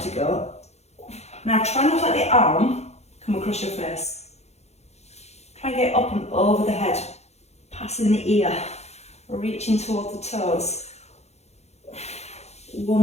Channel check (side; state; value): right; late; 0.31 ms